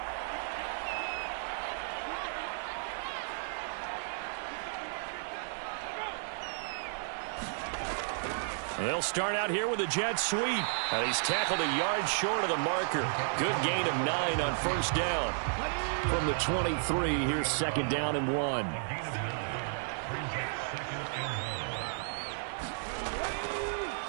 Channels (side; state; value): left; silent; 56 dB below the other